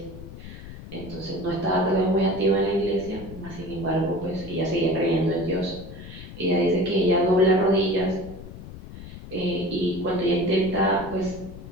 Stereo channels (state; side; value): noise; left; rumble, 14 dB below the sound